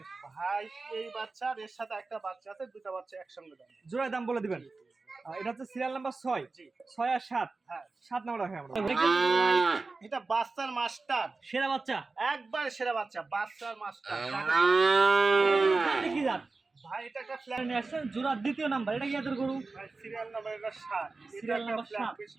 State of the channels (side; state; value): left; quieter; 3.8 dB